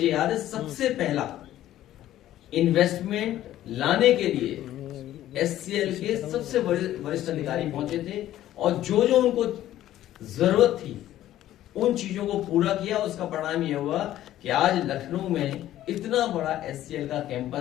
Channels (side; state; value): right; quieter; 13.2 dB